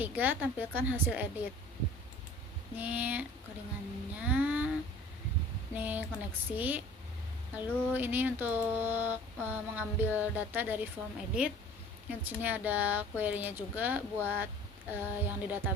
tampilkan hasil edit. Ini codingannya, ini koneksi. Lalu ini untuk mengambil data dari form edit. Di sini ada query-nya juga buat yang di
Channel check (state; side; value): normal; both; correlation 0.47